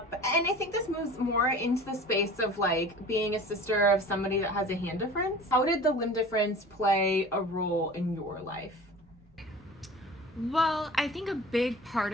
and I think this moves more into the space of like being a sister of somebody that has a hand difference. How did the limb difference play a role in your life? Well, I think a big part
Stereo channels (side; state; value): both; normal; correlation 0.40